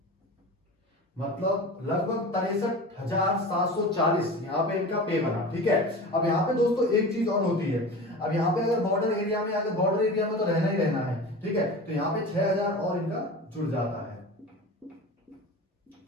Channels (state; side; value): normal; both; correlation 0.33